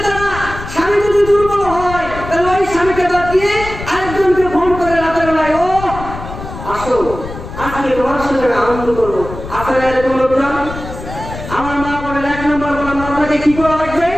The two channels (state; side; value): noise; left; rumble, 11 dB below the sound